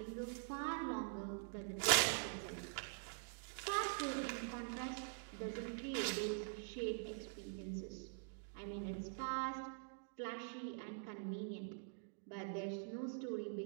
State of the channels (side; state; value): left; silent; digital silence